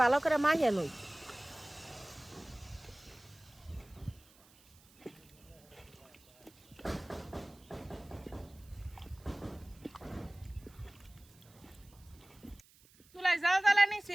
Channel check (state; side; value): noise; right; hiss, 27 dB below the sound